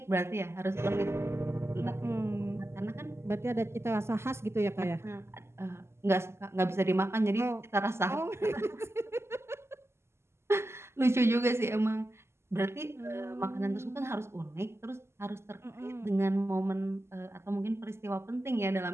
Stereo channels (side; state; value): left; late; 0.12 ms